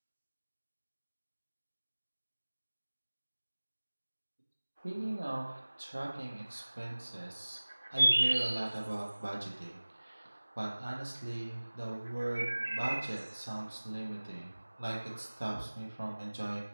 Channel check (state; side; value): inverted; both; correlation -1.00